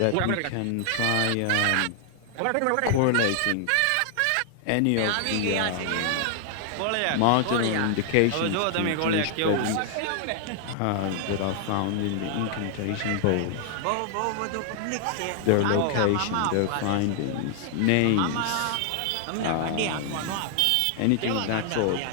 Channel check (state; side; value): different; both; correlation 0.00